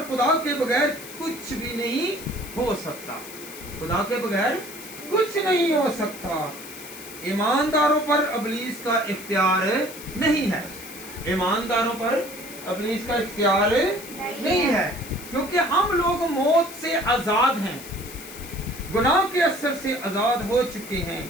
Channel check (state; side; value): noise; left; hiss, 14 dB below the sound